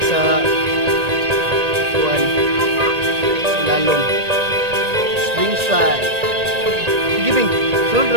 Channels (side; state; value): left; late; 1.8 ms